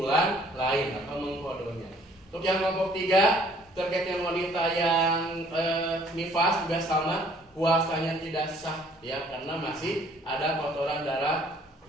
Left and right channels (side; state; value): both; normal; correlation 0.59